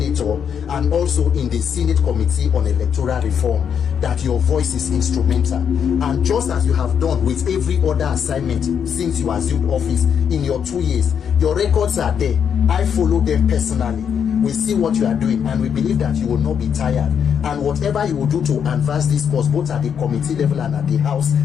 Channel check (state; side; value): quieter; right; 7.7 dB